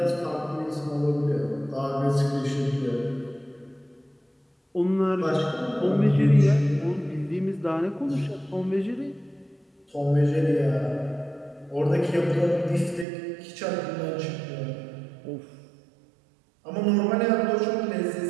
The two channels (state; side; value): drops out; left; at 13.1 s